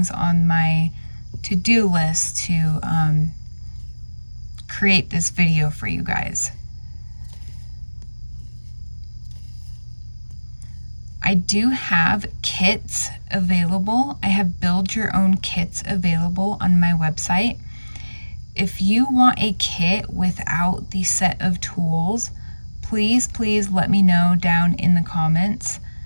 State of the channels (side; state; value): both; inverted; correlation -1.00